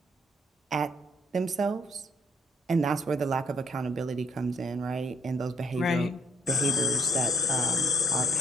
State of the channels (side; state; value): both; normal; correlation 0.64